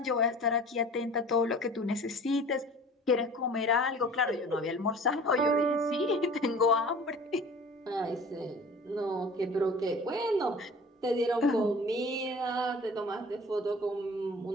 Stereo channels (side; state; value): both; normal; correlation 0.43